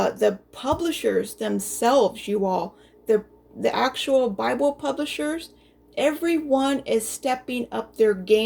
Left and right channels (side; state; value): both; identical; correlation 1.00